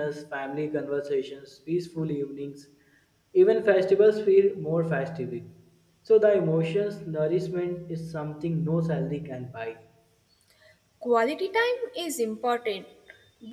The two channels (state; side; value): identical; both; correlation 1.00